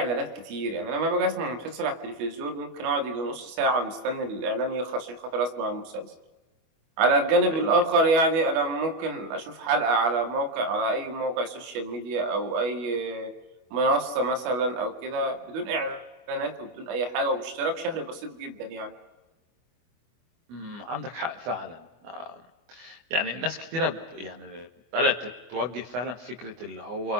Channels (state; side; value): late; left; 24 ms